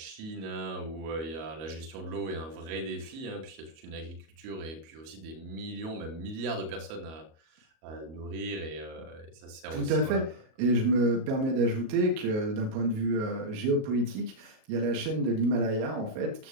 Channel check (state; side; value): late; left; 37 ms